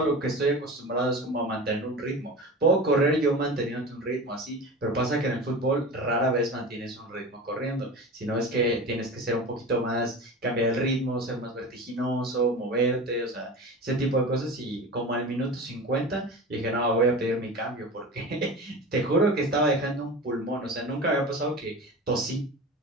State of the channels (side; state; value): both; normal; correlation 0.31